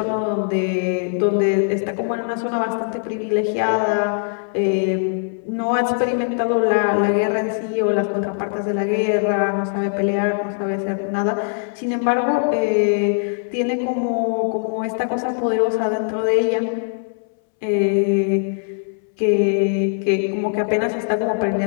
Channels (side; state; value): right; silent; 65 dB below the other